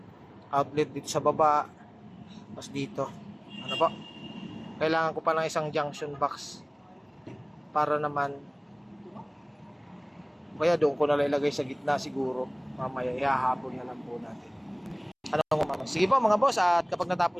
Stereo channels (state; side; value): identical; both; correlation 1.00